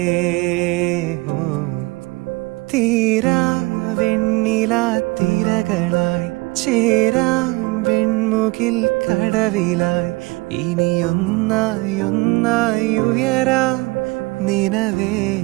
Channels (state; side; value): quieter; left; 24.2 dB